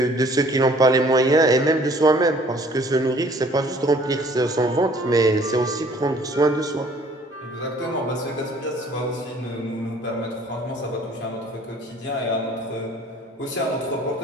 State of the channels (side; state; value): both; normal; correlation 0.55